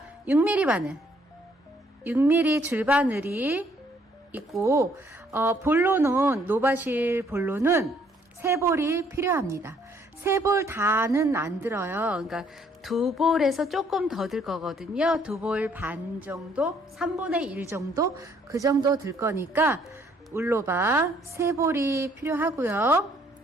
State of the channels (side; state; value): both; normal; correlation 0.65